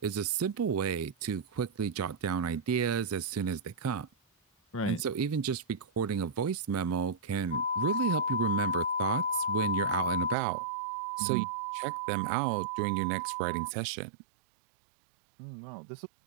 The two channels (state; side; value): drops out; left; at 10.4 s